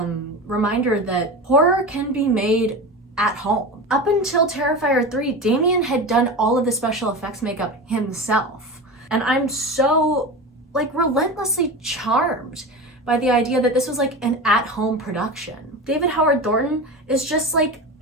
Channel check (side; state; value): both; normal; correlation 0.27